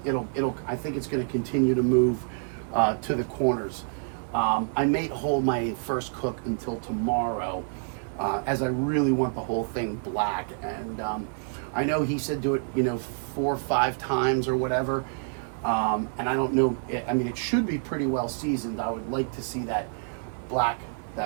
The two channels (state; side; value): silent; left; 60 dB below the other